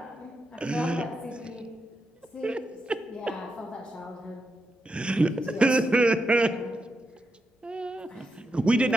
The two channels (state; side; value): normal; both; correlation 0.85